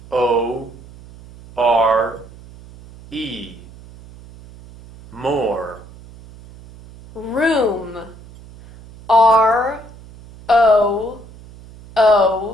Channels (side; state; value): right; noise; hum, 20 dB below the sound